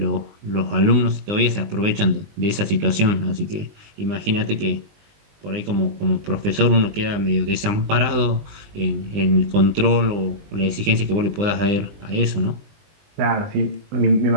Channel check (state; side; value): late; left; 20 ms